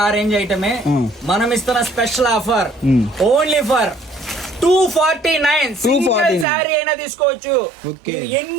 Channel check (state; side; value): drops out; left; at 6.5 s